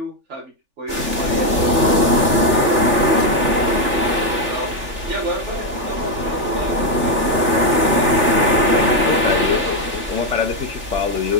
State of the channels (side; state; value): left; late; 3.4 ms